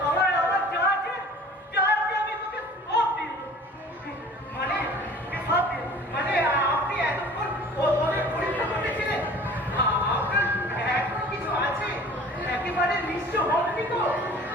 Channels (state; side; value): normal; both; correlation 0.46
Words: আমার যা আছে আমি তোকে সব দিই মানে সব দিই মানে আপনি এতক্ষণ ওদের পরীক্ষা করতেছিলেন আপনার এখনো কিছু আছে একেবারে নিশ্চয় হননি তো